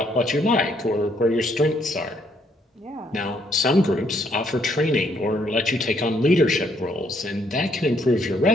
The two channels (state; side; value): normal; both; correlation 0.70